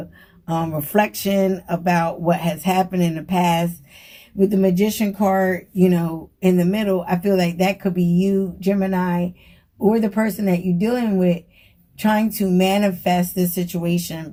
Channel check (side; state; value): both; identical; correlation 1.00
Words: reflection about what has happened in the past. With the Magician card, in the middle, I feel like that could be you, Gemini, or the person that you're dealing with trying to manifest this situation